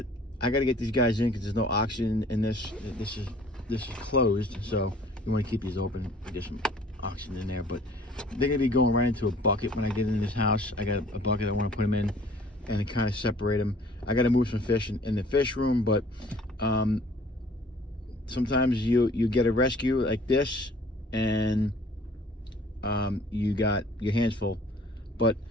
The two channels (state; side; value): normal; both; correlation 0.53